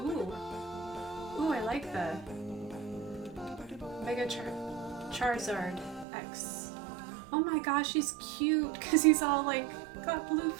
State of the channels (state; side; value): drops out; left; at 6.1 s